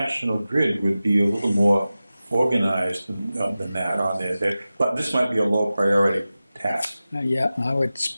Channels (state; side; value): inverted; both; correlation -0.95